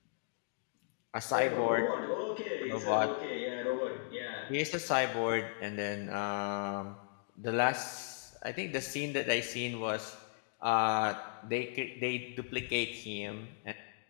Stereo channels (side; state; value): right; silent; digital silence